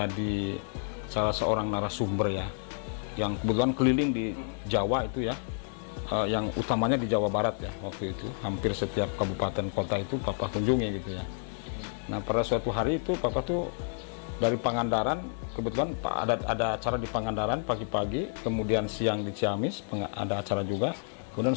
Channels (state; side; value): silent; right; 58 dB below the other